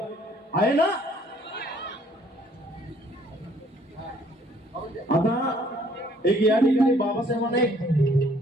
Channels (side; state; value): both; normal; correlation 0.62